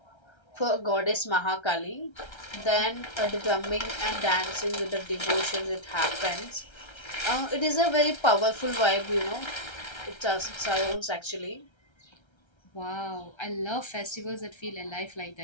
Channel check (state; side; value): late; right; 1.3 ms